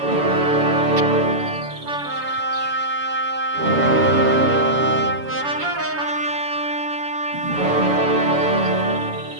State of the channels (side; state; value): left; late; 7.1 ms